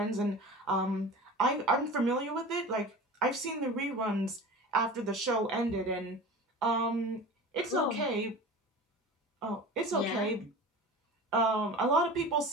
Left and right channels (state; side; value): normal; both; correlation 0.35